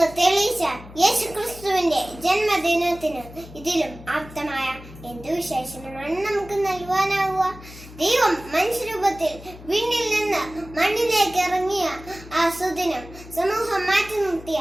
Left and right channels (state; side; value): noise; left; hum, 17 dB below the sound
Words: തെളിയിച്ച യേശു ക്രിസ്തുവിന്റെ ജന്മദിനത്തിന് ഇതിലും ആപ്തമായ എന്തു വിശേഷണമാണ് നമുക്ക് നൽകുവാനാവുക? ദൈവം മനുഷ്യരൂപത്തിൽ വിണ്ണിൽ നിന്ന് മണ്ണിലേക്ക് ഇറങ്ങിയ ആ സുദിനം സമൂഹം മാറ്റി നിർത്തിയ